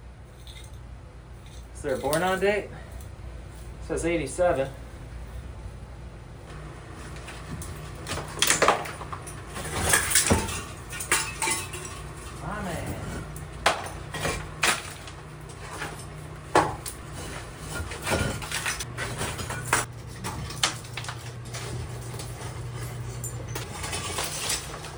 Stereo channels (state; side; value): identical; both; correlation 1.00